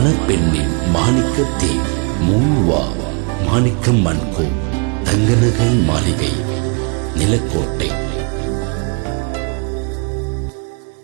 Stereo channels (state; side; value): quieter; left; 34.7 dB